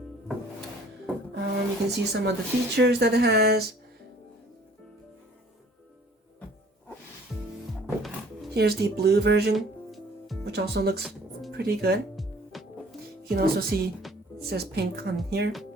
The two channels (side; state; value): both; normal; correlation 0.54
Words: You can see some of the features that it has. Here's the blue version, which also looks pretty good. You can also see it says pink on here.